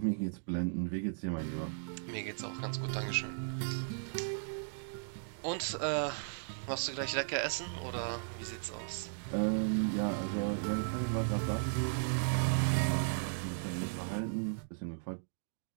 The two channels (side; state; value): left; silent; digital silence